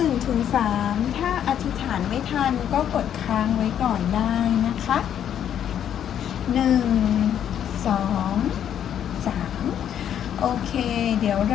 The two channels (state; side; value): quieter; right; 9.6 dB